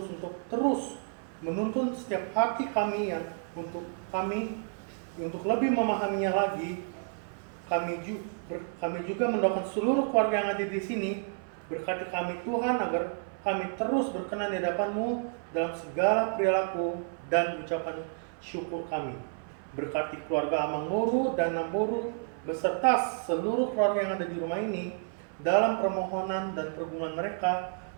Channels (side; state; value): left; silent; 57 dB below the other